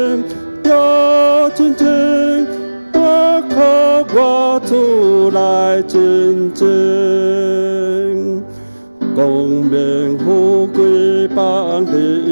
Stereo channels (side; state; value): both; inverted; correlation -1.00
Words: 有真情。我靠我主来真情，光明富贵放